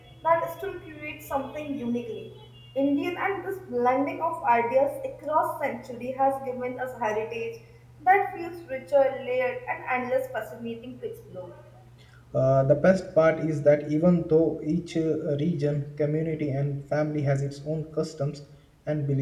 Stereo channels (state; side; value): identical; both; correlation 1.00